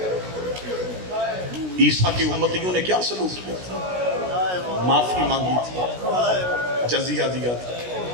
عیسیٰ کی امتیوں نے کیا سلوک کیا تھا؟ معافی مانگی تھی، جزیہ دیا تھا۔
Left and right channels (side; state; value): left; late; 16 ms